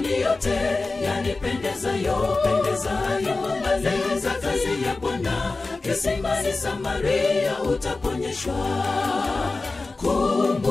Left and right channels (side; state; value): right; quieter; 3.6 dB